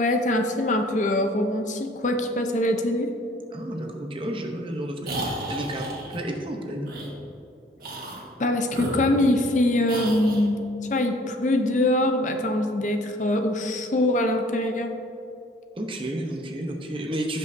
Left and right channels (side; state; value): both; normal; correlation 0.55